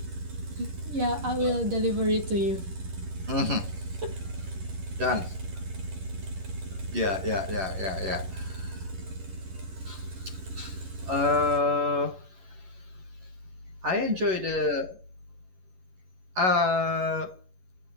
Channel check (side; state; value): left; late; 11 ms